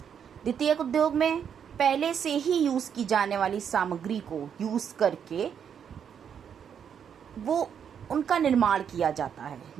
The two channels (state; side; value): quieter; left; 8.0 dB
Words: द्वितीयक उद्योग में पहले से ही यूज की जाने वाली सामग्री को यूज करके वो उनका निर्माण किया जाता है।